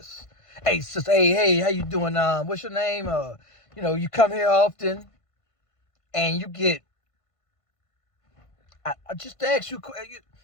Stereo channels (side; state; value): right; late; 1.5 ms